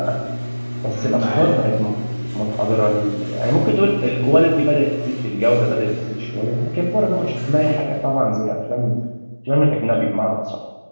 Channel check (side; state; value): both; inverted; correlation -1.00